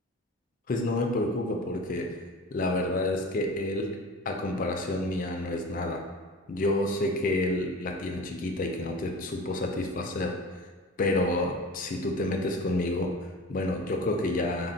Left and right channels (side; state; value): both; normal; correlation 0.36